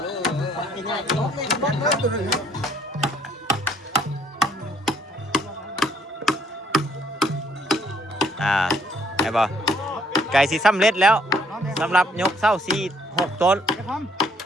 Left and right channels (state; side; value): normal; both; correlation 0.65